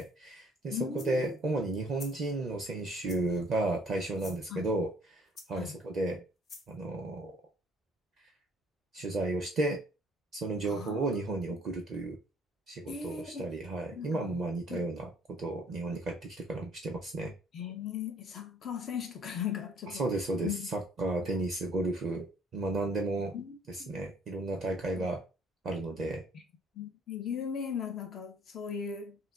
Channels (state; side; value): normal; both; correlation 0.58